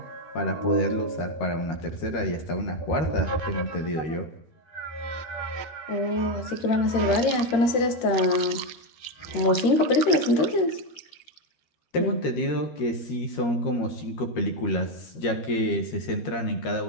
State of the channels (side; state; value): right; late; 12 ms